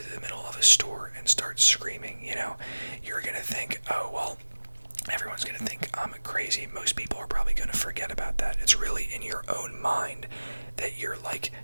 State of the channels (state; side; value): inverted; both; correlation -1.00